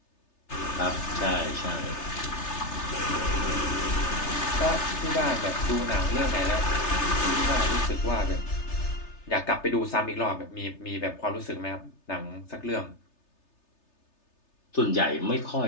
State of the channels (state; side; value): late; right; 3.3 ms